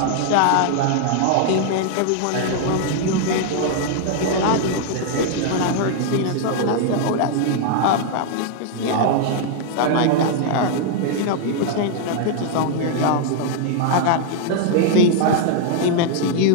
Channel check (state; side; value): different; both; correlation 0.00